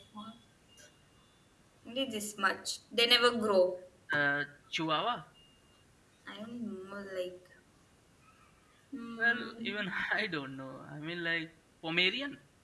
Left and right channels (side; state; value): both; identical; correlation 1.00